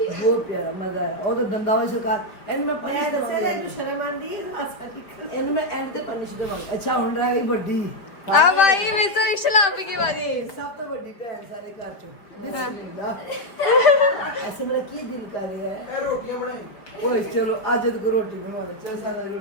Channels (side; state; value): right; late; 5.0 ms